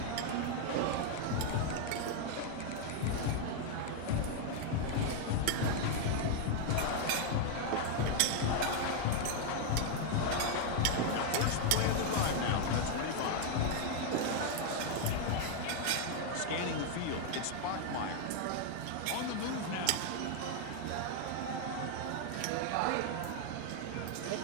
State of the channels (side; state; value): both; different; correlation 0.00